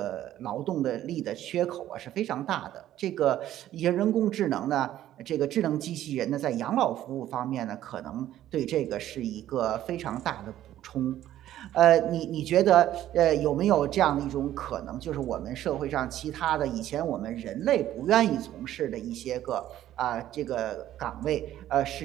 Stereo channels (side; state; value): left; quieter; 12.7 dB